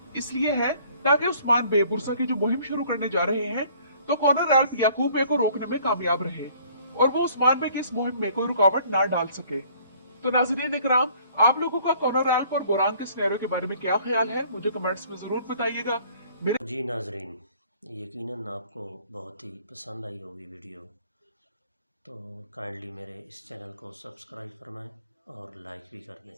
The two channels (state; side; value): inverted; both; correlation -0.57